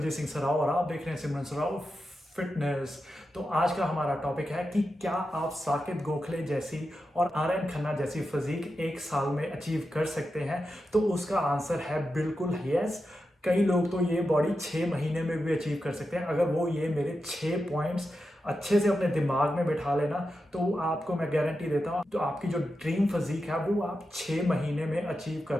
Singh सराव और आप देख रहे हैं सिमरन सराव फिटनेस। तो आज का हमारा टॉपिक है कि क्या आप साकेत गोखले जैसी और आर्यन खन्ना जैसी फिजिक एक साल में अचीव कर सकते हैं। तो उसका आंसर है बिल्कुल यस। कई लोग तो ये बॉडी 6 महीने में भी अचीव कर सकते हैं। अगर वो ये मेरे 6 पॉइंट्स अच्छे से अपने दिमाग में बिठा लेना तो आपको मैं गारंटी देता हूँ तो आपकी जो ड्रीम फिजिक है वो आप 6 महीने में अचीव कर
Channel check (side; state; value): both; normal; correlation 0.89